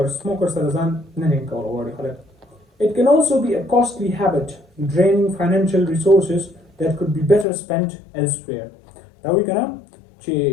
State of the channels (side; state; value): right; drops out; at 7.5 s